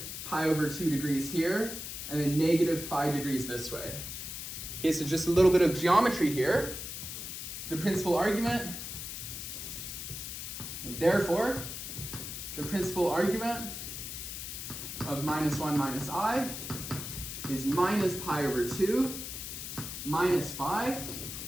pi over 2 degrees here, and then negative 5 degrees this way. Okay, so just a little bit of geometry here. The principal argument, therefore, the principal argument of minus 1 minus I is minus pi over 2 minus 5,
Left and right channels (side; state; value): left; noise; hiss, 7 dB below the sound